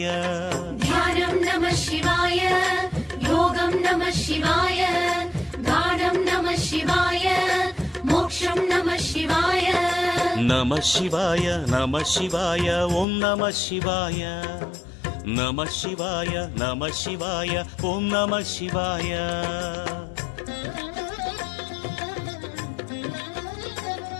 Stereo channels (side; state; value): right; drops out; at 13.1 s